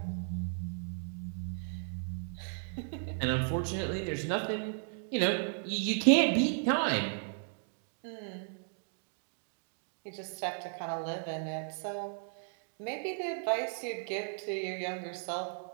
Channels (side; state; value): left; silent; digital silence